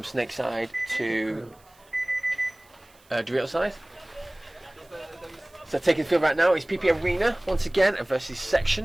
Snake side to Dorito side. So taking the field right now is PP Arena once again versus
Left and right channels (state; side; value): noise; right; hiss, 30 dB below the sound